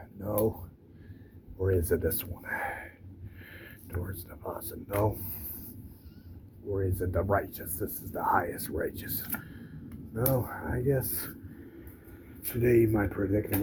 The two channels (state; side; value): identical; both; correlation 1.00